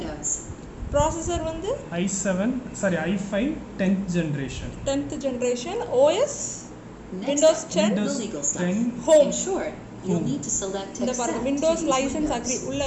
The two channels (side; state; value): both; identical; correlation 1.00